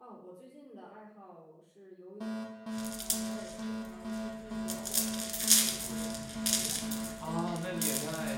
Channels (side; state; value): both; identical; correlation 1.00